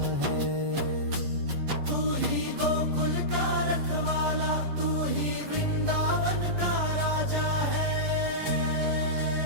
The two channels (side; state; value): left; late; 7.9 ms